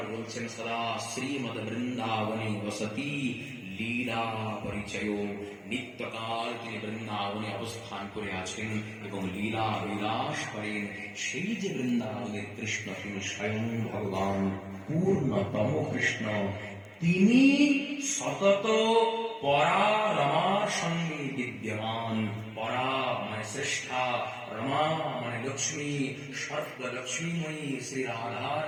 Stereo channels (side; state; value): both; identical; correlation 1.00